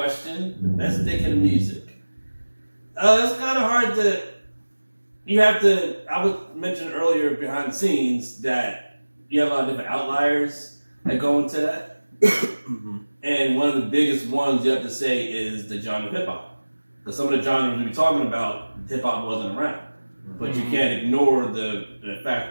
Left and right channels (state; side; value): inverted; both; correlation -1.00